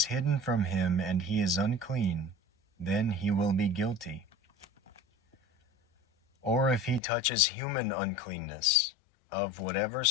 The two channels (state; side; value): drops out; right; at 7.0 s